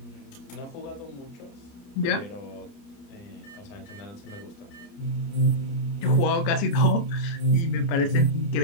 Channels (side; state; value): right; late; 29 ms